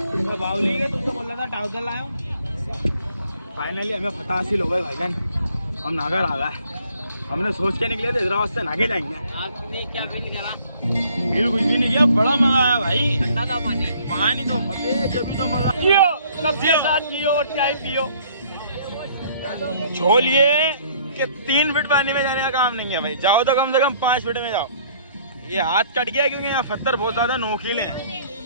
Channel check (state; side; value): inverted; both; correlation -0.59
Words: बावली के तुमसे बोल रहा था ट्राउजर लाया हूँ। फाइनली हमें फतह हासिल हो गई भाईजान। हम नागर आ गए। हमने सोच के निकले थे हैदराबाद से नागे जाएंगे। आपने क्या फील करा? फील कुछ भी नहीं किया, बड़ा मजा आया भाई। ठंडा था पानी। पानी तो अबे जब तो मजा पियो, सबके साथ पियो और चाय पियो। छोलिए कि 3 फीट पानी में जाने का काम नहीं है भाई। जाओ तो कम से कम 5 फीट में जाओ। ये हाथ कट गया क्योंकि यहाँ पत्थर बहुत ज्यादा नोकीले हैं।